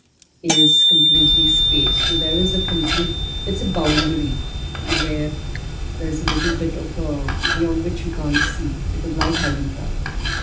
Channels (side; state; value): both; identical; correlation 1.00